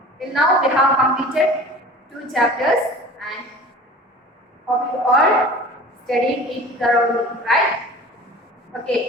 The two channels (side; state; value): both; normal; correlation 0.41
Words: till now we have completed two chapters, and hope you all studied it thoroughly, right?